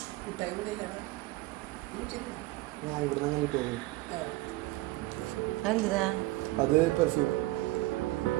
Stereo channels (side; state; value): left; quieter; 19.2 dB